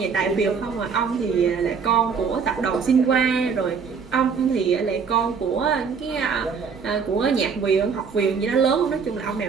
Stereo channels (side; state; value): left; quieter; 5.9 dB